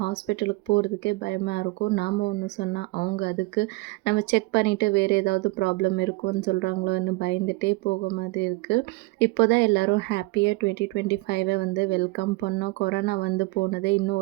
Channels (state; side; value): quieter; left; 24.2 dB